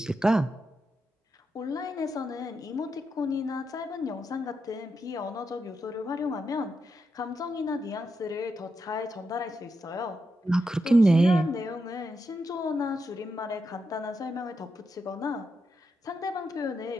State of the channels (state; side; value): normal; both; correlation 0.85